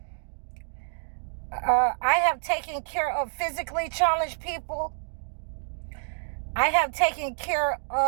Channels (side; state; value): left; silent; digital silence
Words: I have taken care of physically challenged people. I have taken care